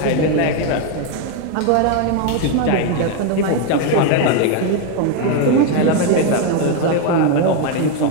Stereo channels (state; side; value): different; both; correlation 0.01